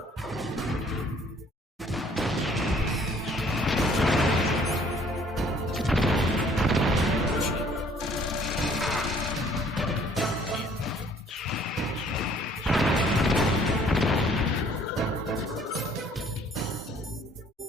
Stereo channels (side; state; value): both; normal; correlation 0.59